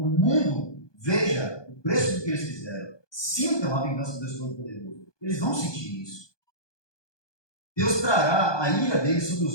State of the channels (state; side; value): late; right; 1.2 ms